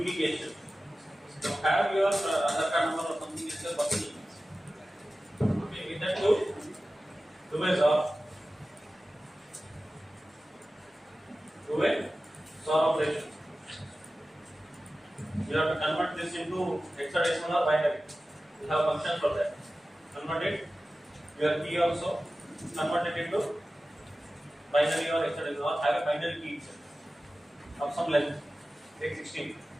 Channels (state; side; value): normal; both; correlation 0.95